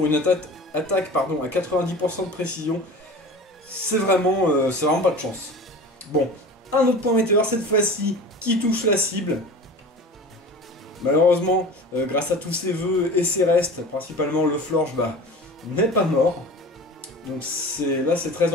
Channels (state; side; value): normal; both; correlation 0.36